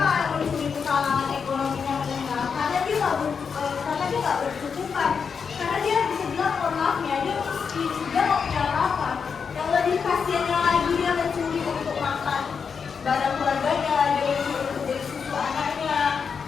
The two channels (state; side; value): quieter; right; 6.1 dB